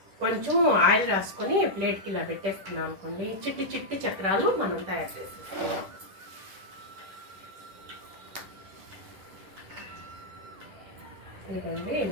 కొంచెం ఆయిల్ రాసుకొని ప్లేట్కి ఇలా పెట్టేసుకున్నాం అనుకోండి, చిట్టి చిట్టి చక్రాలు మనం తయారు చేసేసుకున్నాం. ఇదండి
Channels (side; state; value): left; late; 10 ms